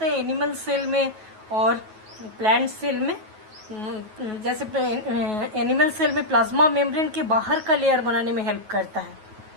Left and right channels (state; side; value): late; left; 9.3 ms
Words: है एनिमल सेल में और प्लांट सेल में। जैसे एनिमल सेल में प्लाज्मा मेम्ब्रेन के बाहर का लेयर बनाने में हेल्प करता है।